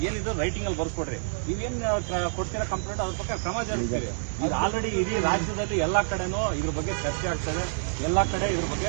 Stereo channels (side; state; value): left; silent; digital silence